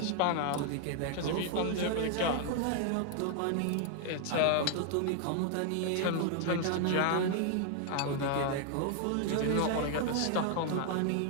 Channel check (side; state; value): both; different; correlation 0.00